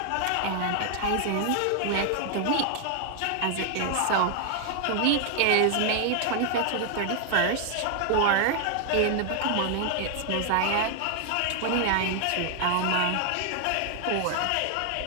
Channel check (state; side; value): different; both; correlation 0.00